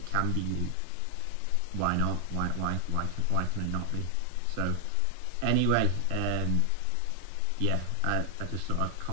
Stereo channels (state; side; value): different; both; correlation 0.00